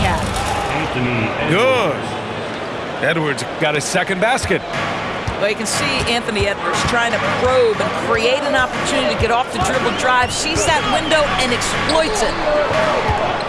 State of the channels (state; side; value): identical; both; correlation 1.00